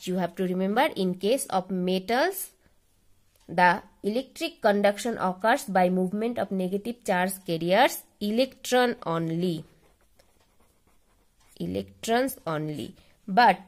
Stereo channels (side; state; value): both; identical; correlation 1.00